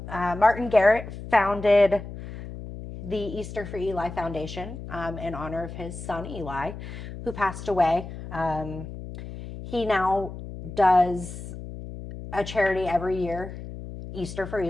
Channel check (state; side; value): noise; left; hum, 11 dB below the sound